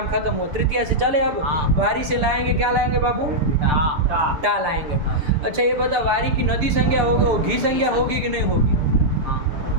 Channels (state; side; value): late; left; 6.9 ms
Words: खत्म हो। तृतीया से चले अब। हाँ। वारी से लाएंगे, क्या लाएंगे बाबू? टा। टा लाएंगे। अच्छा ये बता, वारी की नदी संज्ञा होगी, वो घी संज्ञा होगी कि नहीं होगी?